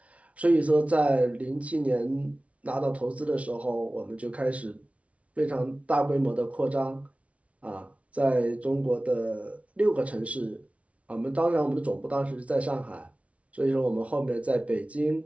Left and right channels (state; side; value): late; left; 0.064 ms